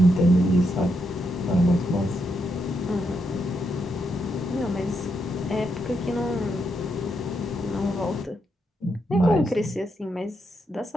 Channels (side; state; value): both; normal; correlation 0.81